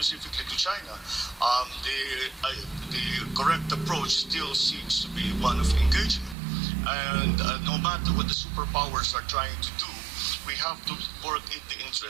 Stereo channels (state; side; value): drops out; left; at 6.4 s